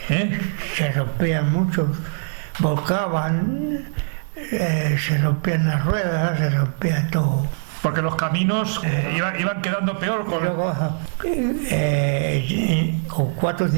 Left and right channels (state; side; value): silent; left; 64 dB below the other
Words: se rompían muchos, volcaban, se rompían las ruedas, se rompía todo. Porque los caminos iban quedando peor Y con... luego con 4 o